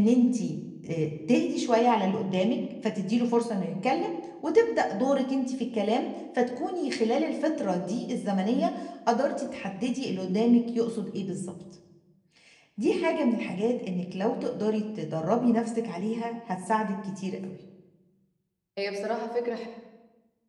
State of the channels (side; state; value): both; identical; correlation 1.00